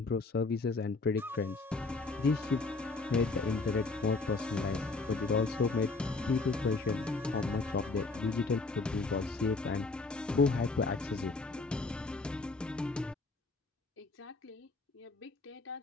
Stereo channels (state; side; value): quieter; right; 3.7 dB